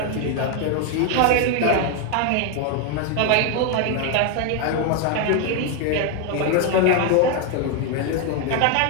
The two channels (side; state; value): both; different; correlation 0.01